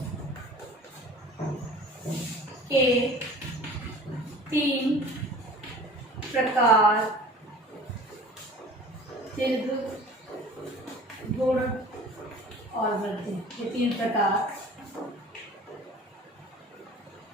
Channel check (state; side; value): normal; both; correlation 0.44